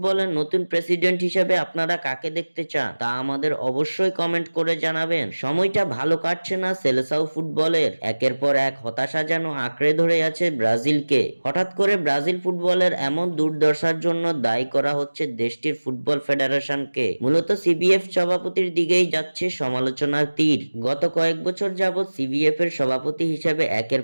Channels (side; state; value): both; inverted; correlation -1.00